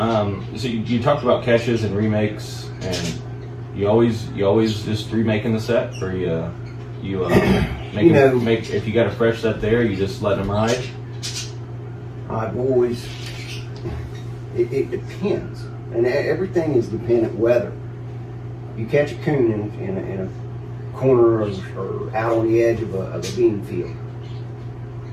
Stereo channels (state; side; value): identical; both; correlation 1.00